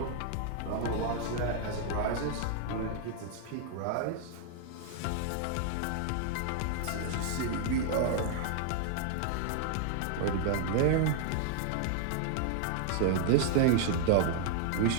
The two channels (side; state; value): both; different; correlation 0.00